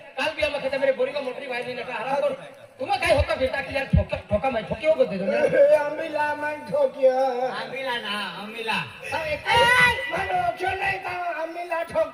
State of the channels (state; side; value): identical; both; correlation 1.00